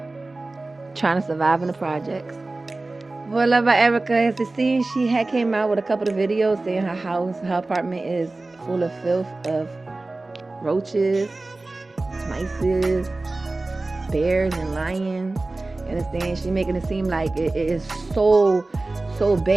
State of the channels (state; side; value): quieter; left; 3.1 dB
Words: trying to survive in the projects. For Luvd by Erica, as you see, she had came out with a couple of videos saying her apartment is full of filth of roaches, mice, bears, and lions. You understand? She's making it seem like it is so